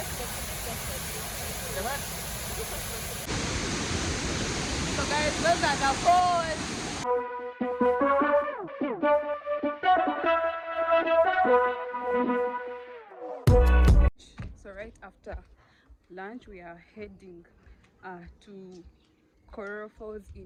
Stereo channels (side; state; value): both; identical; correlation 1.00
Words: guys, those are the falls. So right after lunch, we are heading to Kororo Falls